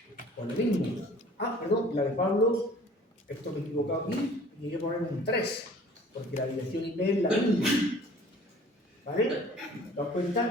pues lo mismo. Perdón, la de Pablo, esto me he equivocado aquí, y hay que poner un 3, porque la dirección IP es la misma. ¿Vale? ¿Te das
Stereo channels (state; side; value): normal; both; correlation 0.49